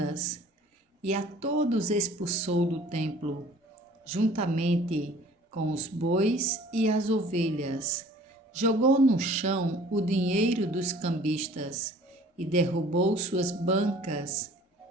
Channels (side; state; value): both; normal; correlation 0.50